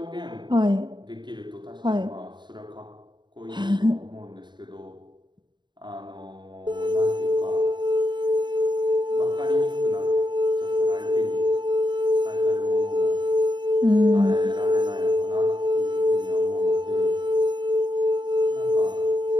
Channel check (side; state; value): left; late; 0.22 ms